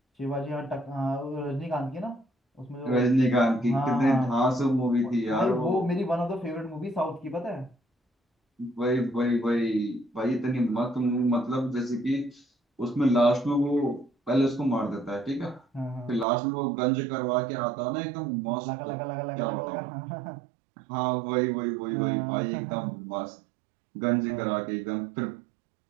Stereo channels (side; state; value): left; drops out; at 16.2 s